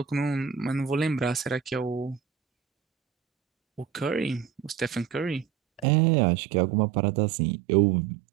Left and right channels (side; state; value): left; drops out; at 5.9 s